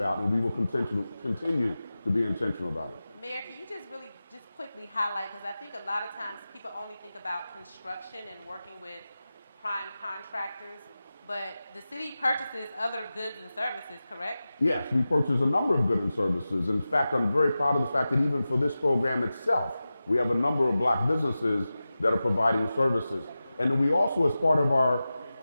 and we will continue to be intentional about it. Mayor, can you just really just quickly highlight, because I think a lot of times people only think about construction and working with prime contractors, but the city purchases other goods and services, correct? Yes, we purchase a number of goods and services. In fact, I'm very proud of the fact that even for this program itself, we have a number of black businesses that are providing services. And we also, as part of our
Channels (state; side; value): inverted; both; correlation -0.94